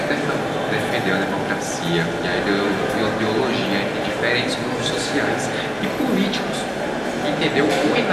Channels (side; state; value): both; identical; correlation 1.00